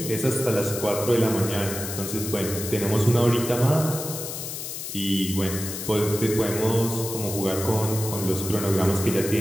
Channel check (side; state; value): left; noise; hiss, 7 dB below the sound